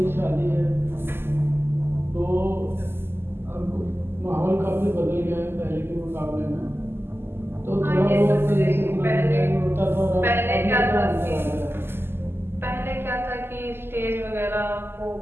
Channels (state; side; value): late; left; 0.11 ms